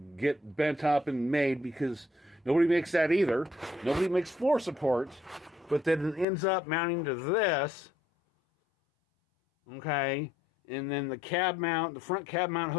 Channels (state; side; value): drops out; right; at 6.2 s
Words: bent up and made because nobody makes that either. Nobody makes floor supports, but then it ends up mounting to this. Okay, and then the cab mount, the front cab mount